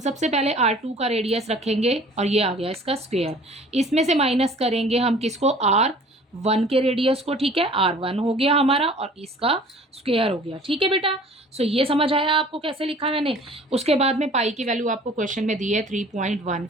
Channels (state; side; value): normal; both; correlation 0.49